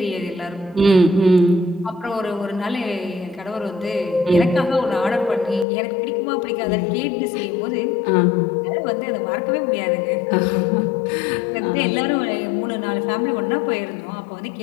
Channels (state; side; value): drops out; right; at 5.7 s